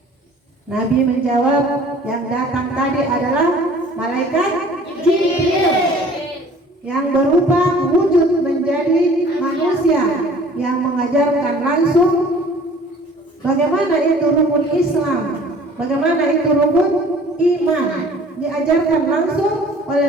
Nabi menjawab, yang datang tadi adalah malaikat Jibril yang berupa wujud menjadi manusia yang mengajarkan langsung bagaimana itu rukun Islam, bagaimana itu rukun iman, diajarkan langsung oleh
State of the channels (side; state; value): both; normal; correlation 0.50